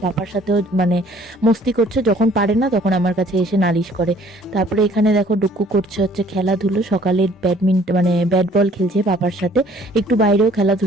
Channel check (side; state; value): both; normal; correlation 0.57